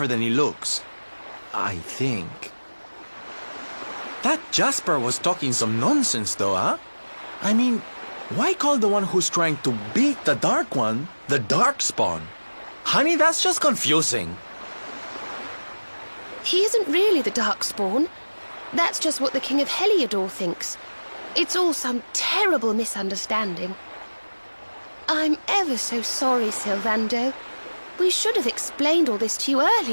than he looks. I think. That Jasper was talking some nonsense, though, huh? I mean, why call the one who's trying to beat the Dark One the Darkspawn? Honey, that's just confusing. He isn't really the Darkspawn. That's just what the King of Heliodor thinks. It's all some terrible misunderstanding. I'm ever so sorry, Sylvando. We should have explained all this to you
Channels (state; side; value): inverted; both; correlation -1.00